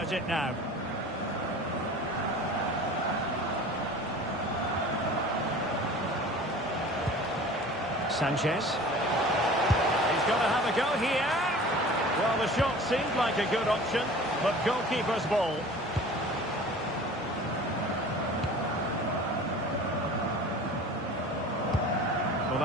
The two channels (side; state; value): both; normal; correlation 0.41